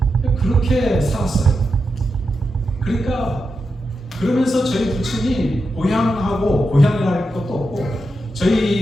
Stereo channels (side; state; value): both; normal; correlation 0.87